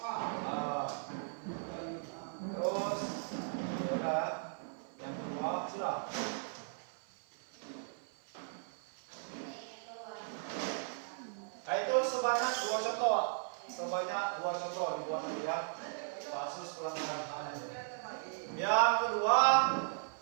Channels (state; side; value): silent; left; 53 dB below the other